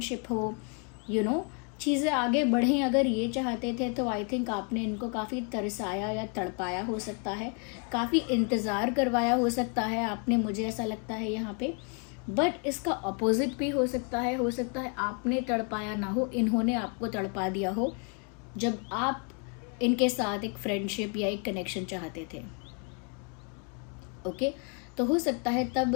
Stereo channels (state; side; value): quieter; right; 38.9 dB